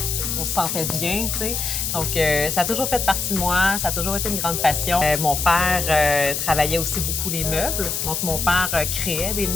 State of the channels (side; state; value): left; noise; hiss, 2 dB below the sound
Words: qu'on se sentait bien, tu sais. Donc, ça a toujours fait partie de moi, ça a toujours été une grande passion. Mon père travaillait aussi beaucoup les meubles. Donc, mon père créait des